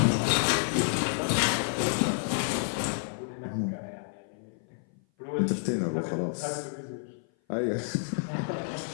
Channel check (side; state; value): right; silent; 56 dB below the other